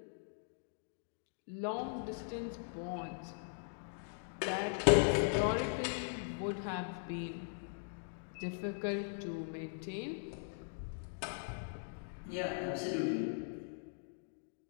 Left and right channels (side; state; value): right; silent; digital silence